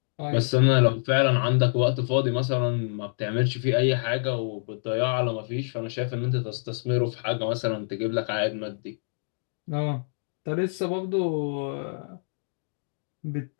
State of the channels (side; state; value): right; silent; digital silence